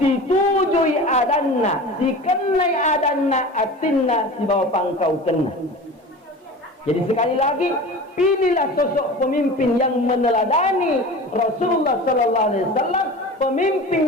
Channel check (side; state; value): both; normal; correlation 0.35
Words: situjui adanna, si kenai adanna, atinna si bawa pangkau kena. Jadi sekali lagi, pilihlah sosok pemimpin yang meneladani Rasulullah Sallallahu Alaihi Wasallam, pemimpin